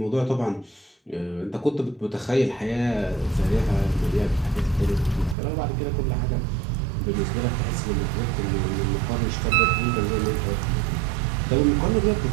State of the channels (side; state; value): left; drops out; at 5.4 s